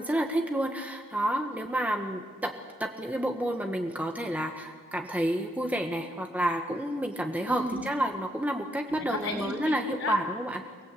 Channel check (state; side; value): normal; both; correlation 0.78